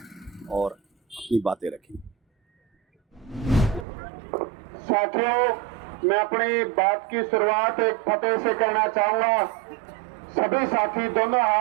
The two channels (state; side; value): drops out; left; at 3.9 s